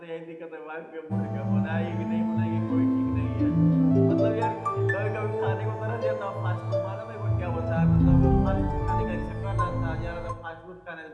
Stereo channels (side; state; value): both; identical; correlation 1.00